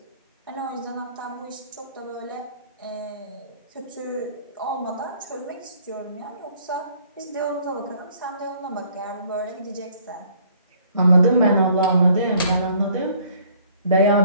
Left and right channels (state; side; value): inverted; both; correlation -0.59